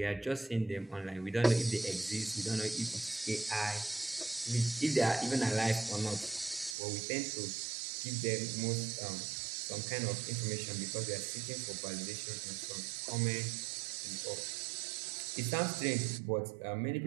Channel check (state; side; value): drops out; left; at 6.8 s